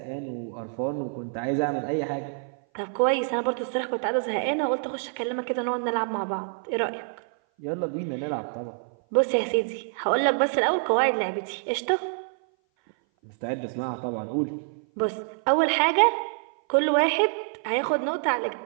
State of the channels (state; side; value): silent; left; 57 dB below the other